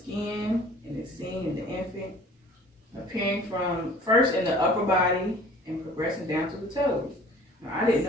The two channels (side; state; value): both; normal; correlation 0.48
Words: and it's seen in the infant, appearing from first in the upper body and progressing down to the toes. Now, I didn't